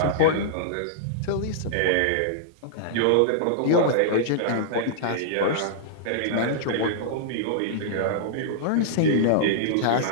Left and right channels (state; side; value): different; both; correlation -0.02